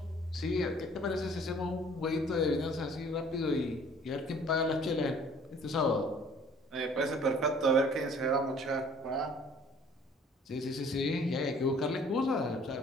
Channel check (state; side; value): normal; both; correlation 0.54